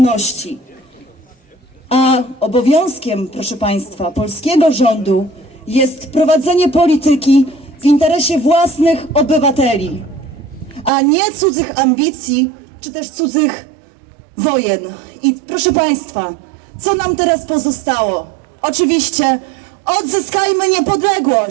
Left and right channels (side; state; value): left; drops out; at 10.9 s